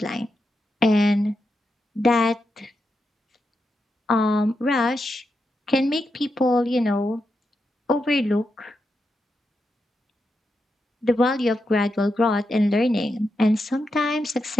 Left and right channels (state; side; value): normal; both; correlation 0.86